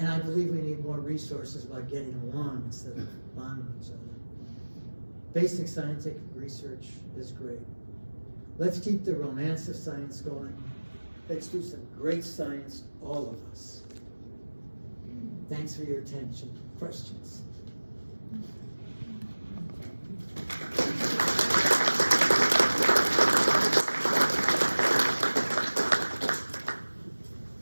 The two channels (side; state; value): both; inverted; correlation -1.00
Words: I believe we need more resources about getting along instead of bombing each other. Basic scientific research is great. Let's keep the romance of science going. Let's do some great science, all of us. Thanks for your attention. Questions?